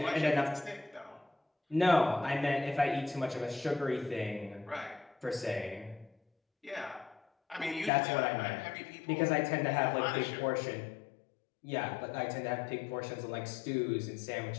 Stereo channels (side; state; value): right; drops out; at 7.9 s